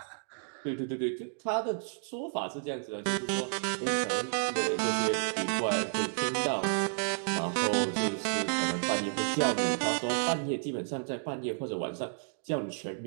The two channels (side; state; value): left; silent; digital silence